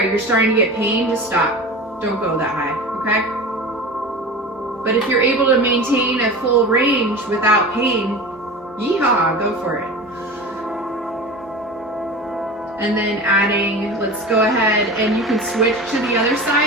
you're starting to get pain, just stop. Don't go that high, okay? But if you're able to maintain a full range without pain, yeehaw, go for it. And then adding, let's go ahead, and you can switch to the other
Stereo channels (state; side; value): normal; both; correlation 0.32